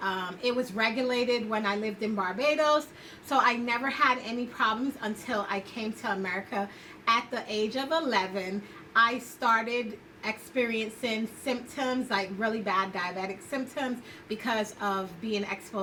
It was regulated when I lived in Barbados, so I never had any problems until I came to America at the age of 11. I started experiencing symptoms, like really bad diabetic symptoms, because of being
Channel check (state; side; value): identical; both; correlation 1.00